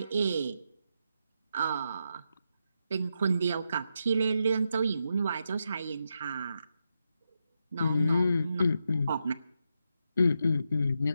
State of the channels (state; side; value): inverted; both; correlation -0.84